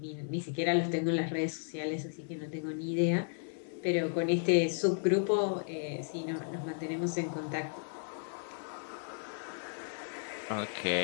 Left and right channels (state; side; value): silent; right; 55 dB below the other